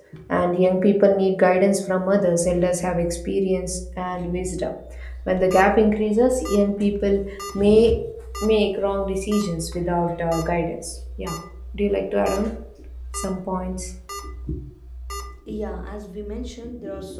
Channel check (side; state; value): both; identical; correlation 1.00